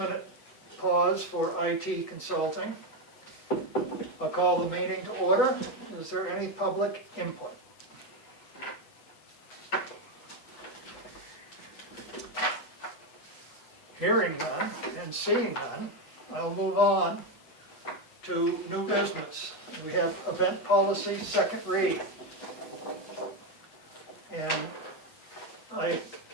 pause for IT consulting. I'll call the meeting to order. Is there any public input? Hearing none and seeing none, I'll move on to new business. We have event policy, second read. And I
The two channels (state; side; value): late; right; 7.9 ms